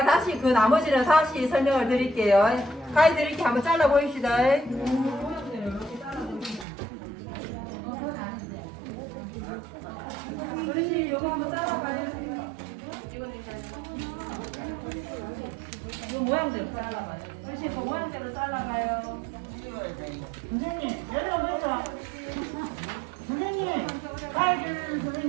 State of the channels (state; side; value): drops out; left; at 6.7 s